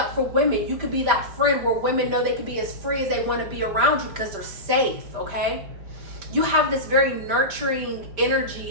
for women. You could be that friend where women know they can be as free as they want to be around you because they're safe, okay? You have this very nurturing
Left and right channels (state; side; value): late; left; 5.1 ms